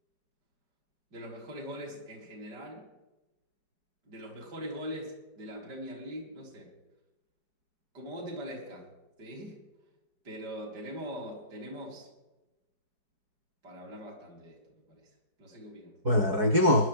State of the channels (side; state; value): left; late; 4.7 ms